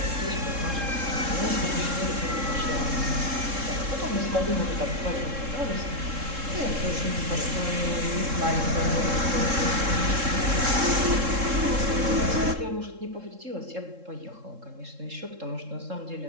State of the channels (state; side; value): late; left; 3.7 ms